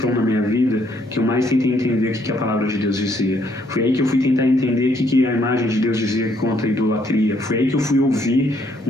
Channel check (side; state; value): both; normal; correlation 0.69